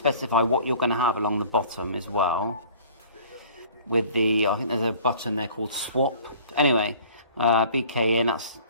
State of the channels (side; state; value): both; inverted; correlation -0.49